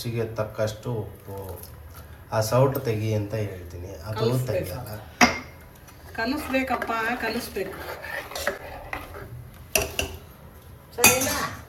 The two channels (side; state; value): both; identical; correlation 1.00